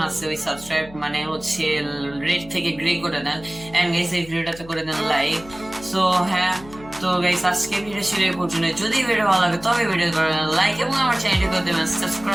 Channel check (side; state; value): left; noise; hum, 19 dB below the sound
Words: আছে, ওই সাবস্ক্রাইব মানে হচ্ছে রেড থেকে গ্রে করে দেন, এন্ড গাইস এই ভিডিওটাতে করে দেন লাইক। সো হ্যাঁ, তো গাইস আজকে ভিডিও ছিল এই পর্যন্ত। যদি ভিডিও ভালো লাগে তবে ভিডিও করে দেন লাইক এবং আমার চ্যানেলটি করে দেবেন